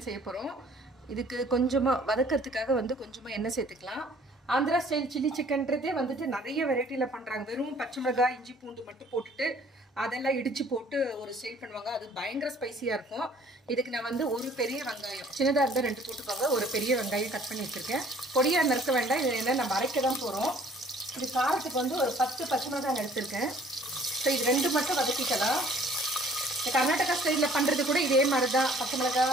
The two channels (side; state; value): both; normal; correlation 0.56